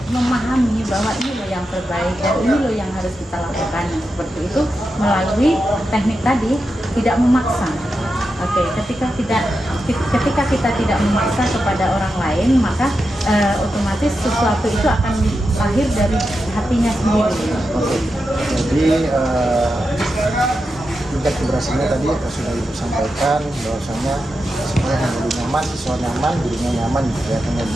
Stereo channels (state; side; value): normal; both; correlation 0.88